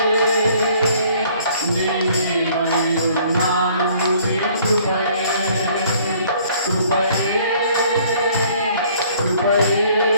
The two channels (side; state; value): both; inverted; correlation -0.58